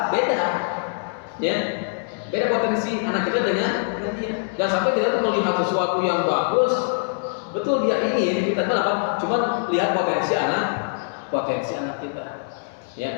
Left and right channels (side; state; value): right; silent; 63 dB below the other